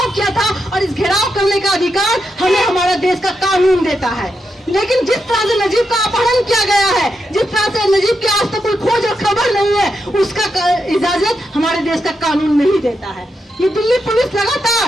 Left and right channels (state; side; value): normal; both; correlation 0.85